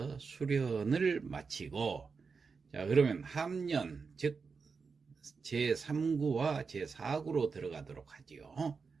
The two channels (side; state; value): left; quieter; 5.1 dB